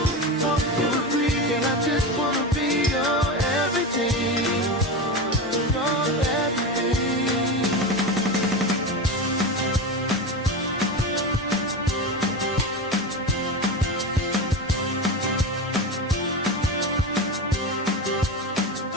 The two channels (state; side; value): normal; both; correlation 0.21